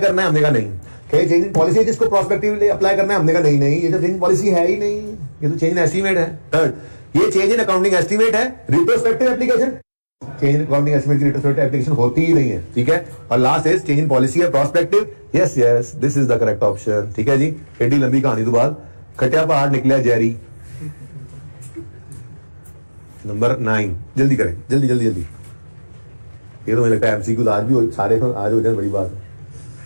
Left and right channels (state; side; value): inverted; both; correlation -1.00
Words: करना है? हमने कहा नहीं। क्या ये चेंज इन पॉलिसी है जिसको प्रोस्पेक्टिवली अप्लाई करना है? हमने कहा नहीं, ये तो चेंज इन पॉलिसी है ही नहीं, ये तो चेंज इन एस्टीमेट है। थर्ड, ये चेंज इन अकाउंटिंग एस्टीमेट है, retrospective application, change in accounting estimate की रिट्रोस्पेक्टिव एप्लीकेशन होती ही नहीं है, ठीक है। और last is change in policy है prospective. Yes this is the correct option, ठीक है जी। एडी लंबी कहानी तो बाद खटिया पहाड़ निकला जेरी। नंबर 9, जल्दी करें, जल्दी। ये तो मुझे लगता है एमसीक्यू आज भी सारे आज हो जाए, बड़ी बात है।